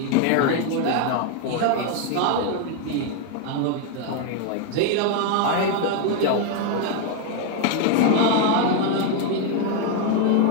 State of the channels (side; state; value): both; different; correlation 0.01